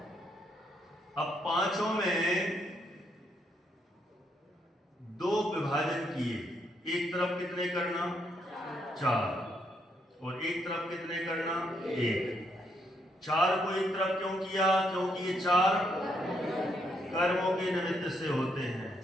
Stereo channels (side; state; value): both; normal; correlation 0.75